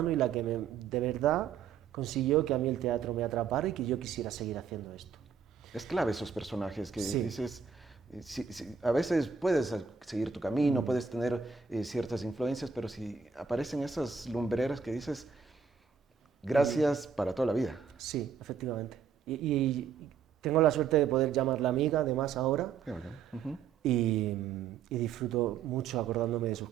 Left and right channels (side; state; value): left; quieter; 6.4 dB